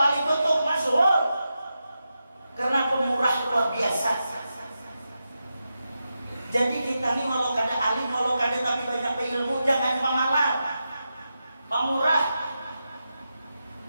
tutup masyhur karena pemurah luar biasa. Jadi kita ini walau kada alim, walau kada tapi banyak ilmu, jangan pemalar, pemurah.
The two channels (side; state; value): both; inverted; correlation -0.89